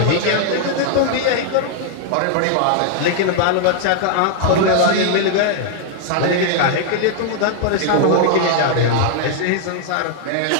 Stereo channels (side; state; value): both; different; correlation 0.00